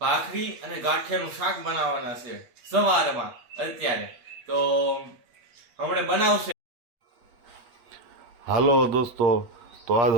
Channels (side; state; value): left; late; 8.5 ms